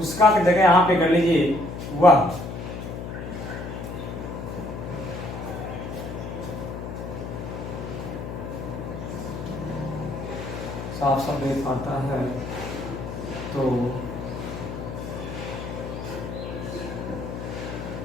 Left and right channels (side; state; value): left; noise; hum, 7 dB below the sound